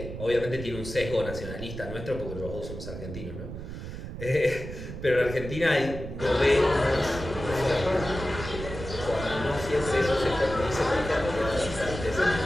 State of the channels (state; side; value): noise; right; rumble, 9 dB below the sound